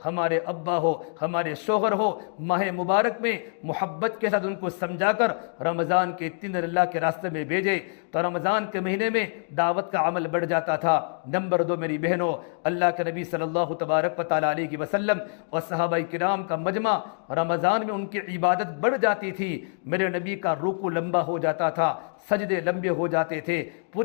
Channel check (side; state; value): right; silent; 61 dB below the other